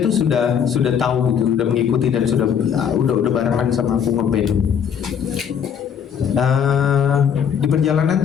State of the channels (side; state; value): right; quieter; 7.8 dB